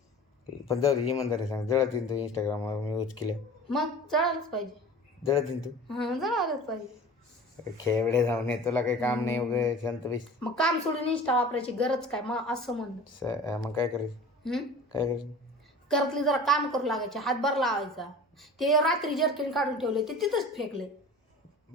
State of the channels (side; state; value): both; normal; correlation 0.39